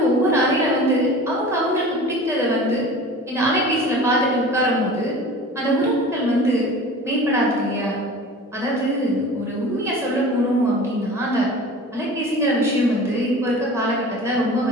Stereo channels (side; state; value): both; normal; correlation 0.39